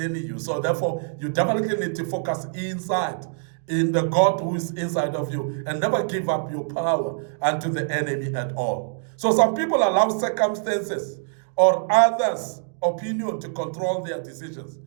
you. So therefore, you definitely need to focus inside, in the God who is inside of you, and never give up your power unto the enemy at all. So some people allow circumstances or others' opinion to control their decisions.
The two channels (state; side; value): silent; left; digital silence